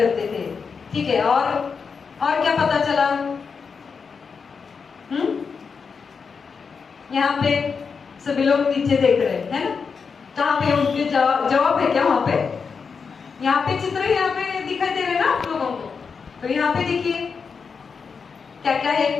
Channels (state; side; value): quieter; right; 5.6 dB